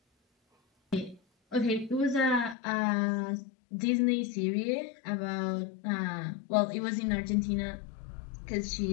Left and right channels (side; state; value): right; drops out; at 2.6 s